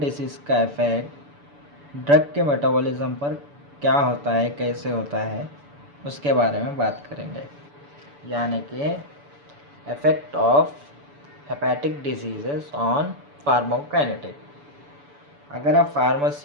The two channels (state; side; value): late; left; 6.9 ms